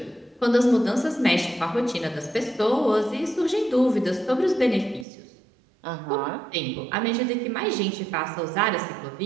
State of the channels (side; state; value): left; drops out; at 5.1 s